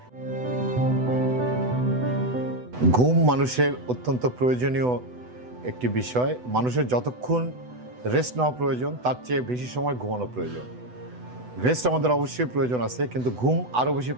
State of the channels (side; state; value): left; late; 8.0 ms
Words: ঘুম মানুষের অত্যন্ত প্রয়োজনীয় একটি বিষয়। মানুষের যতক্ষণ রেস্ট নেওয়া প্রয়োজন তার চেয়ে বেশি সময় ঘুমানো প্রয়োজন। রেস্ট আমাদের অবশ্যই প্রয়োজন আছে, কিন্তু ঘুম আরও বেশি